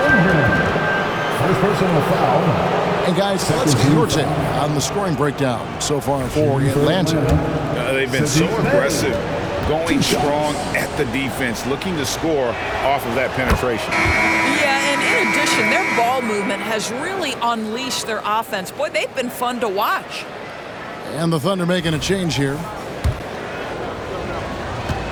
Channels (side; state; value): both; identical; correlation 1.00